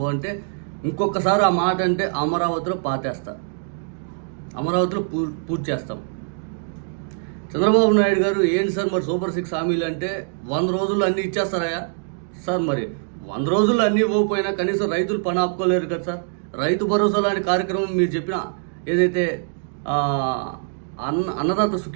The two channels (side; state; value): left; silent; digital silence